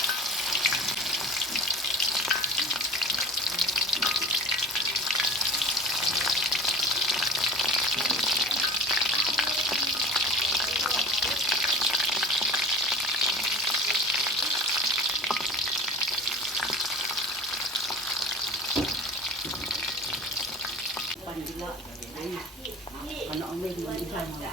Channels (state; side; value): normal; both; correlation 0.37